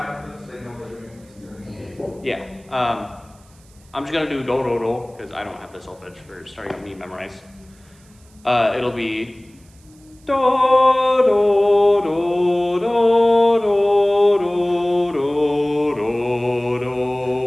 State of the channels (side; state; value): right; noise; hiss, 30 dB below the sound